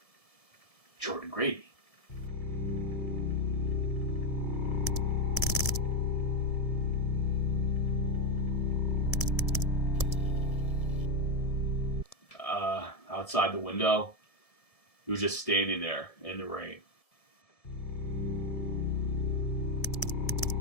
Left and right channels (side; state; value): right; late; 1.7 ms